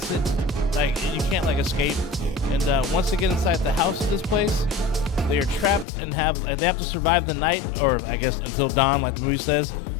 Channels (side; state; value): right; drops out; at 5.9 s